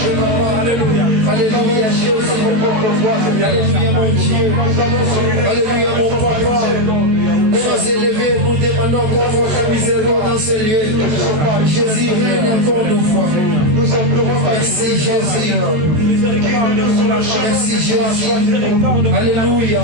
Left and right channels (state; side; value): late; left; 14 ms